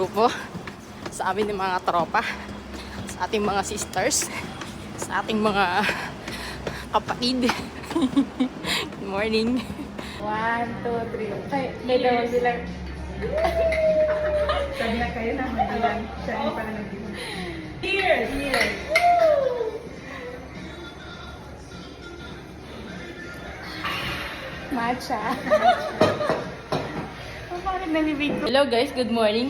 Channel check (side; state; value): both; identical; correlation 1.00